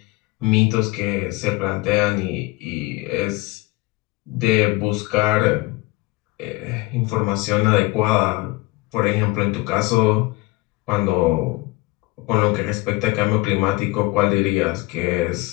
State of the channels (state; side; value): quieter; right; 22.4 dB